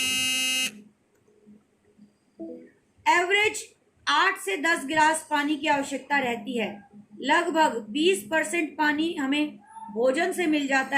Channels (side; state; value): both; identical; correlation 1.00